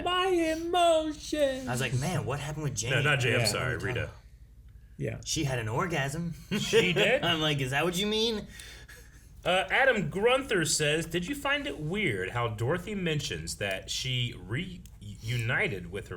My emotions. I was like, man, what happened with Jane? No, not Jane. I'm sorry, Rita. Yeah. She had an orgasm. She did? I'm like, is that what you mean? Adam Grunther says, did you find it weird how Dorothy mentions that she reunited with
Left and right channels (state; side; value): identical; both; correlation 1.00